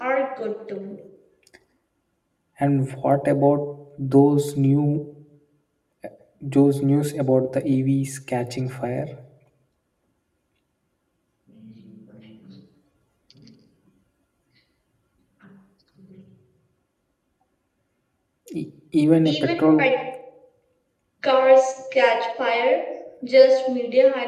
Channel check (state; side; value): identical; both; correlation 1.00